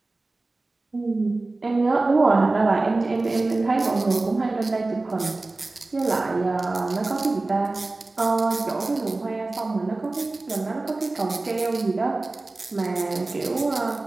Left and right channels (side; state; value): left; quieter; 3.2 dB